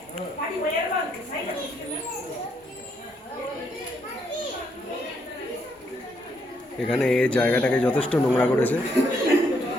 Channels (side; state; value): both; normal; correlation 0.74